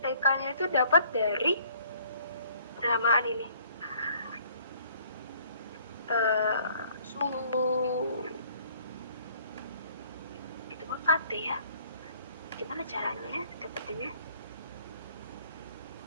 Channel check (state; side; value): inverted; both; correlation -0.58